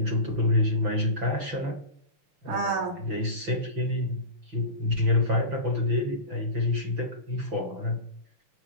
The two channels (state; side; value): late; left; 5.9 ms